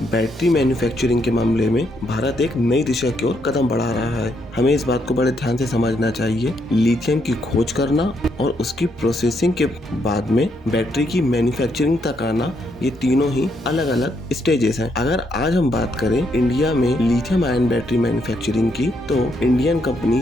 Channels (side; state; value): both; normal; correlation 0.76